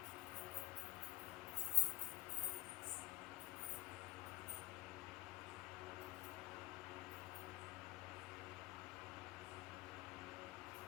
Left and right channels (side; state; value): right; quieter; 18.0 dB